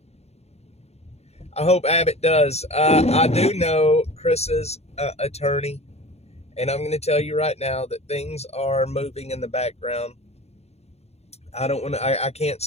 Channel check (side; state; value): right; late; 0.31 ms